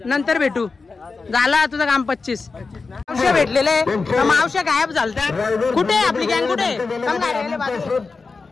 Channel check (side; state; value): right; quieter; 4.3 dB